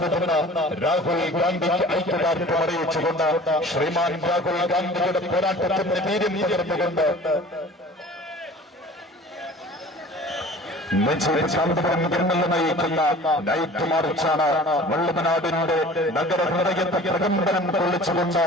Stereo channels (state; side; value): normal; both; correlation 0.44